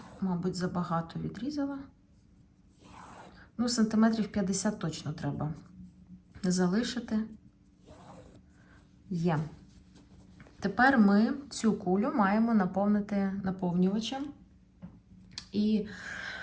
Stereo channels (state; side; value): identical; both; correlation 1.00